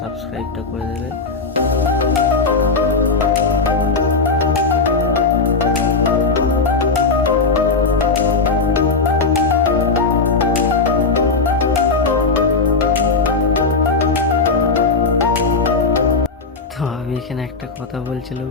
করে দেবে। তো আমি এখানে একটা কথা বলছিলাম,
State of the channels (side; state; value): right; quieter; 4.2 dB